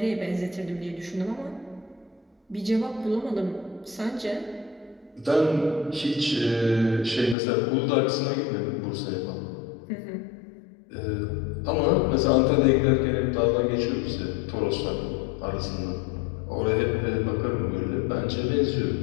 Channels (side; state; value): right; drops out; at 7.4 s